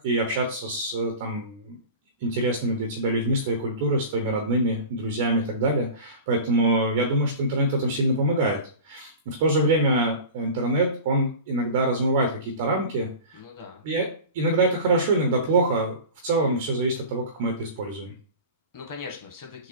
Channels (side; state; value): both; inverted; correlation -0.34